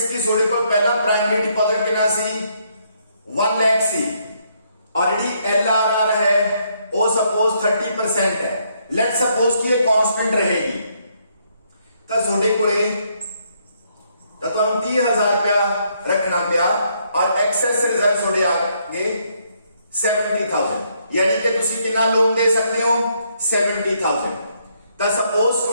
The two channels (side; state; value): both; inverted; correlation -0.72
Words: की थोड़े को पहला प्राइमरी डिपॉजिट कितना सी 1 लाख सी, ऑलरेडी LRR है वो सपोज 30% है, लेट सपोज कि ये कांस्टेंट रहेगी तो थोड़े को 30,000 रुपया रखना पिया और एक्सेस रिजर्व थोड़े आगे 70,000, यानी कि तुसी कितना लोन दे सकते हो 70,000। तो सपोज